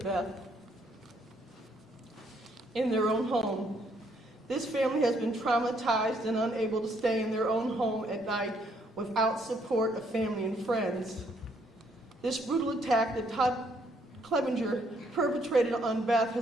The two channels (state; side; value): normal; both; correlation 0.69